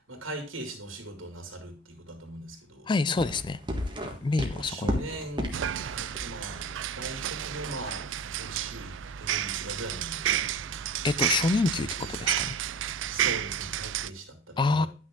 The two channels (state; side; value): normal; both; correlation 0.37